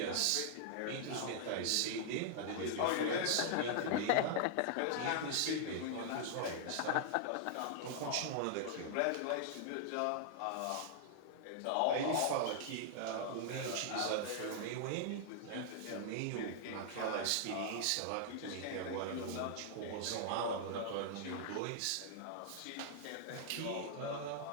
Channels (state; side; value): different; both; correlation -0.01